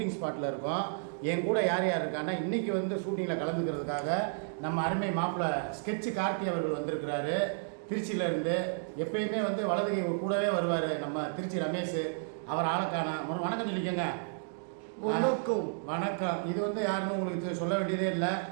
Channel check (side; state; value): left; silent; digital silence